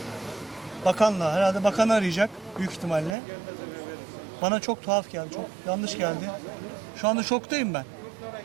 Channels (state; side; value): drops out; left; at 3.2 s